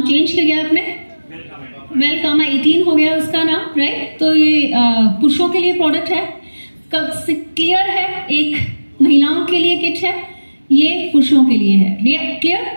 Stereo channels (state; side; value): inverted; both; correlation -1.00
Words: चेंज किया गया आपने, वेलकामा 18 हो गया उसका नाम, राइट। तो ये पुरुषों के लिए प्रोडक्ट है, क्लियर है, एक महिलाओं के लिए किट है, ये पुरुषों के लिए है,